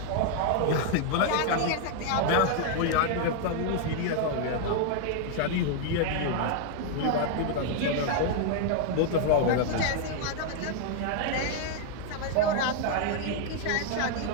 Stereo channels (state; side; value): different; both; correlation 0.00